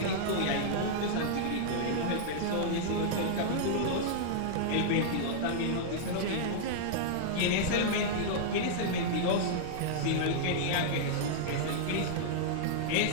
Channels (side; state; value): both; different; correlation -0.02